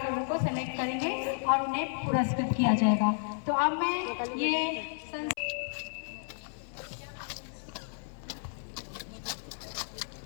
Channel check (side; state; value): right; silent; 56 dB below the other